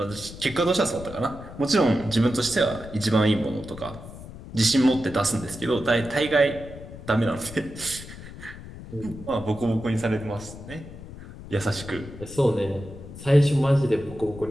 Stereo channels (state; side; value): noise; left; rumble, 14 dB below the sound